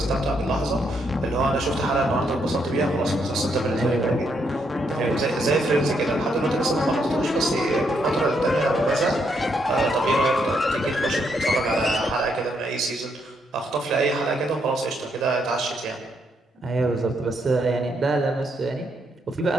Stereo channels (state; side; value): normal; both; correlation 0.76